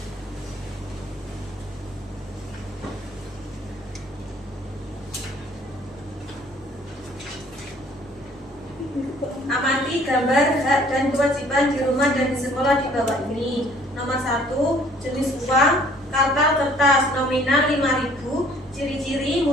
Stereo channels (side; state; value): both; normal; correlation 0.57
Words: Amati gambar hak dan kewajiban di rumah dan di sekolah di bawah ini. Nomor 1, jenis uang, kartal kertas nominal 5.000, ciri-ciri